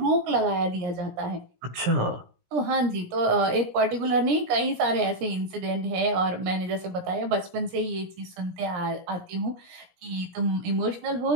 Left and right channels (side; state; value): left; late; 17 ms